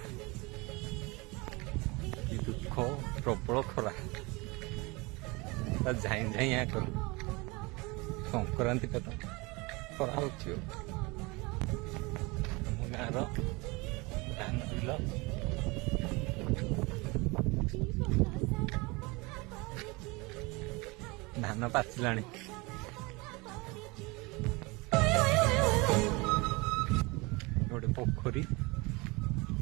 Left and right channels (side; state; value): left; quieter; 25.5 dB